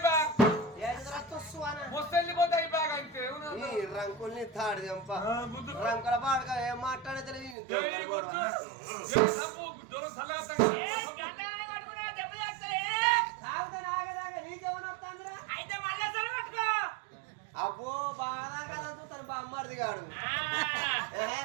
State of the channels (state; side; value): drops out; left; at 7.6 s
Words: ఈ రంకుల్ని తాడు చంప రంకుల పాడక ఏం మాట్లాడలేదు అబ్బో బాగా కదా తను బామ్మడిది కాడు